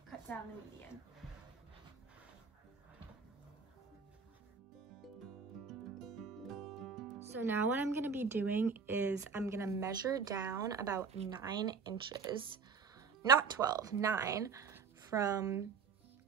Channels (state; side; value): quieter; left; 5.6 dB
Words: Cut down the median. So now what I'm gonna be doing is I'm gonna measure down about 9 inches not 12, 9 from